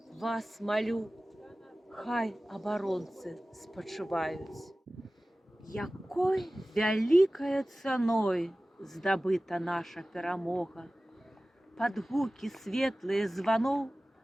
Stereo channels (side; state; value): both; normal; correlation 0.97